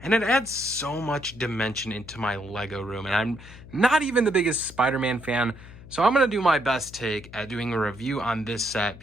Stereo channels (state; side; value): noise; left; hum, 17 dB below the sound